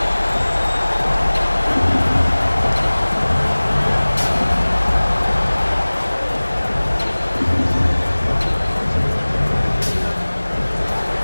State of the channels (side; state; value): both; inverted; correlation -1.00